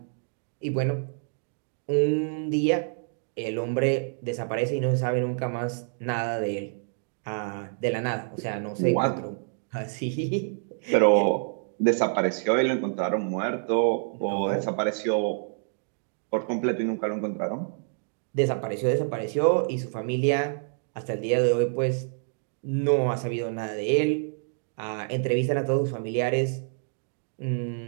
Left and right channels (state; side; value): silent; left; digital silence